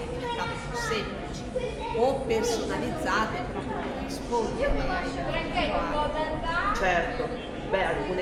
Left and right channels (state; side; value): identical; both; correlation 1.00